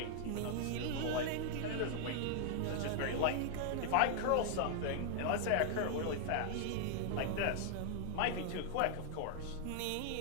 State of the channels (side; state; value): both; different; correlation 0.00